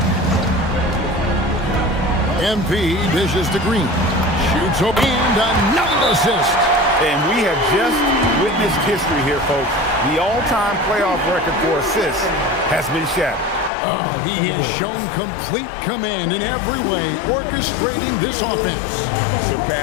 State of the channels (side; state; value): right; drops out; at 13.7 s